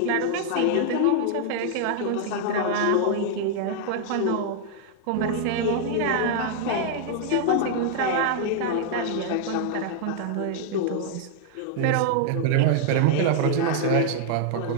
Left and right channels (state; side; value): different; both; correlation -0.01